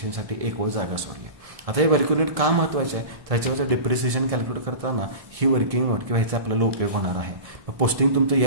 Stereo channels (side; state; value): left; late; 1.7 ms